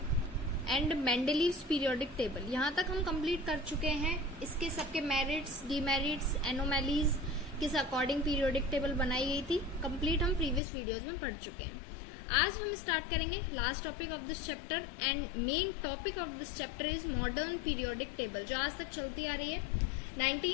and Mendeleev's periodic table, यहाँ तक हम कंप्लीट कर चुके हैं। इसके सबके मेरिट्स, डीमेरिट्स, एनोमैलीज किस अकॉर्डिंग पीरियोडिक टेबल बनाई गई थी, कंप्लीट हम प्रीवियस वीडियोज में पढ़ चुके हैं। आज हम स्टार्ट करेंगे last topic of this chapter and main topic of this chapter is modern periodic table, जो आज तक चलती आ रही है।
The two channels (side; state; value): right; drops out; at 10.6 s